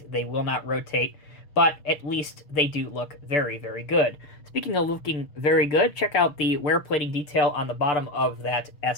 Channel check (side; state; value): right; late; 6.5 ms